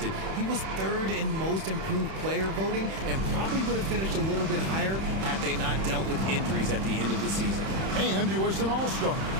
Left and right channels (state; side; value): late; left; 31 ms